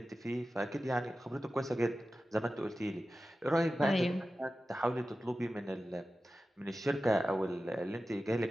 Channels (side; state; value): both; normal; correlation 0.94